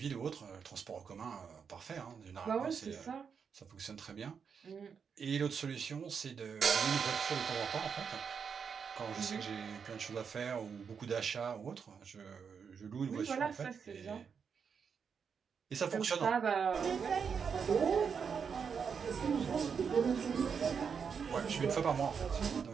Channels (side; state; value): left; quieter; 6.4 dB